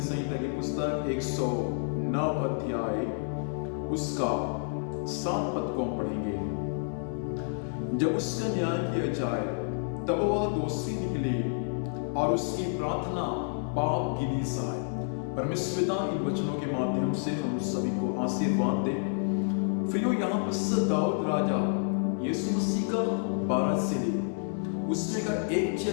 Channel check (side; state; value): right; silent; 58 dB below the other